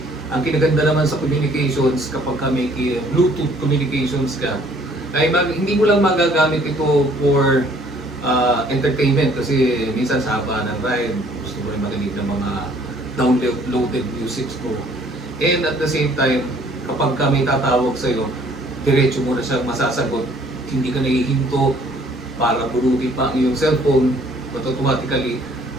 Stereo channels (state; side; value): normal; both; correlation 0.59